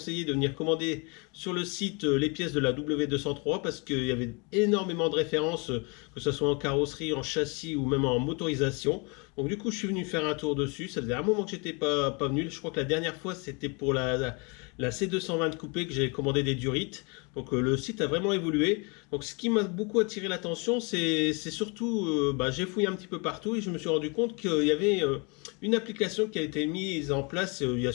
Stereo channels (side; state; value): right; quieter; 31.4 dB